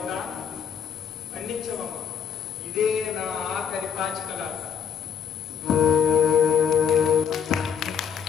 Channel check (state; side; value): quieter; right; 7.5 dB